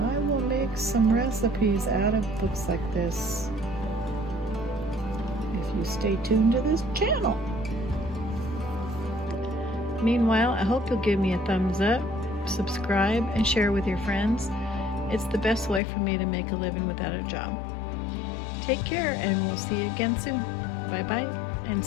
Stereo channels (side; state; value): right; drops out; at 15.8 s